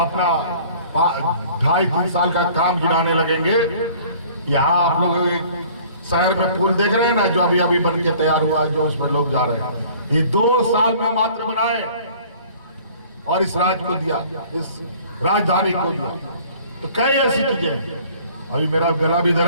2.5-3 साल का काम गिनाने लगेंगे। यहाँ आप लोग एक शहर में पुल देख रहे हैं ना, जो अभी अभी बन के तैयार हुआ है, जो उसमें लोग जा रहे हैं, ये 2 साल में मात्र बनाए और इस राज्य को दिया, इस राजधानी को दिया। तो कई ऐसी चीजें। अभी मेरा गला भी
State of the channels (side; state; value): both; inverted; correlation -0.51